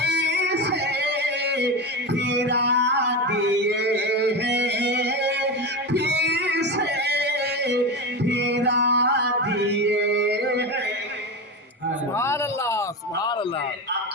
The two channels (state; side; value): normal; both; correlation 0.20